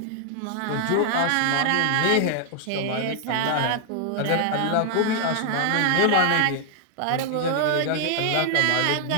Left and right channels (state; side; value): different; both; correlation 0.00